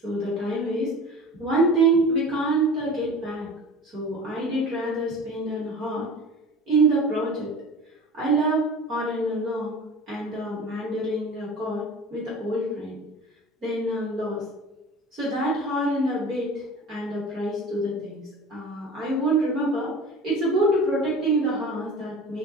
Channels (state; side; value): normal; both; correlation 0.38